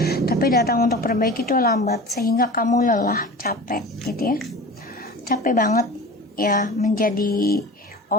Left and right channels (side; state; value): both; normal; correlation 0.36